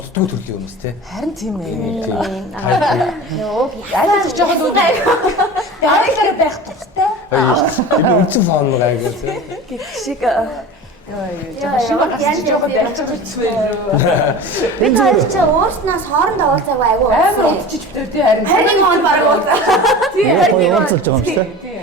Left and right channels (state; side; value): normal; both; correlation 0.34